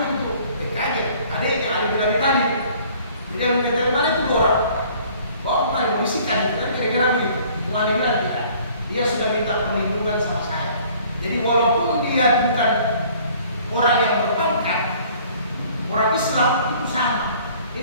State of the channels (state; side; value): inverted; both; correlation -0.54